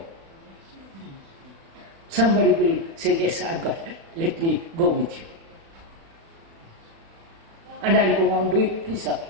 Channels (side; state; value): left; late; 36 ms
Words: Somebody will say, yes, I've got it. Let me go with you. And I'll go on doing this. Please,